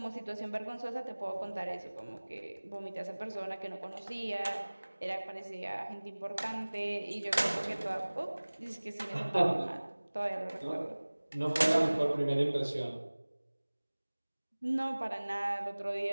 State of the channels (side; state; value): both; inverted; correlation -1.00